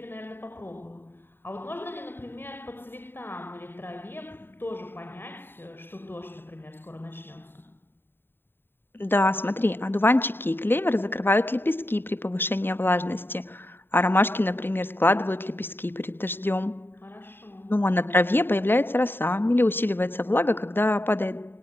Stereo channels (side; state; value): right; late; 0.10 ms